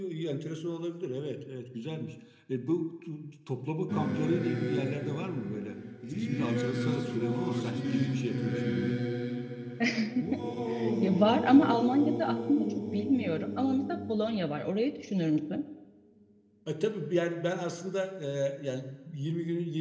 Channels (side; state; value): both; identical; correlation 1.00